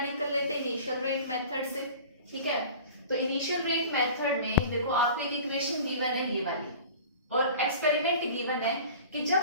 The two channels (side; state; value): both; inverted; correlation -0.40